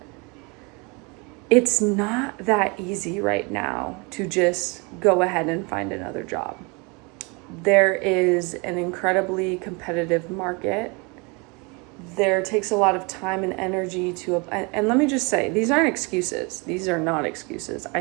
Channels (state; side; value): quieter; left; 29.6 dB